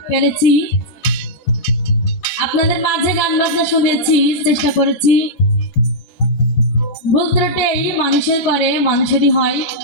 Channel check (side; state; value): right; late; 14 ms